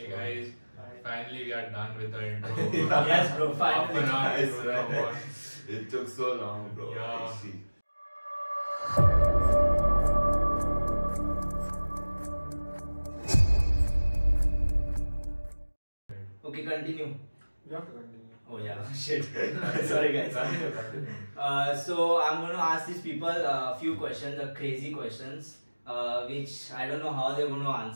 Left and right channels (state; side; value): inverted; both; correlation -1.00